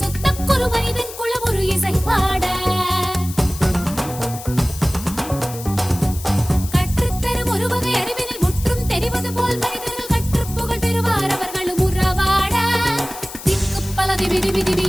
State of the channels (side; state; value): left; noise; hiss, 13 dB below the sound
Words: சுத்தக்கொரு மனிதன் குளம் ஒரு இசை பாட